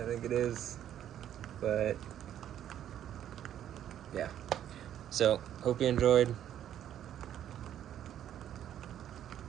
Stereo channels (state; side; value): quieter; left; 10.7 dB